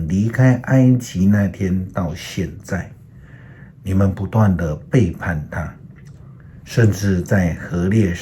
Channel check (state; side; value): identical; both; correlation 1.00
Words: 离开埃及那天到现在，你们不断的背叛他，甚至在何烈